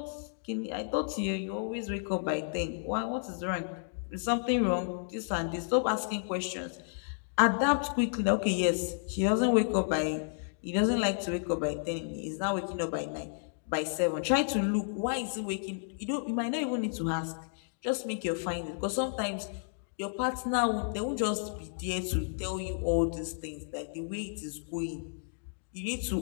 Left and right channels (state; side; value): silent; right; digital silence